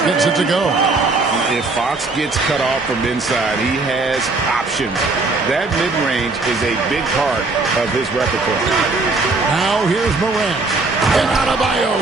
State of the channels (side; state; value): left; quieter; 3.5 dB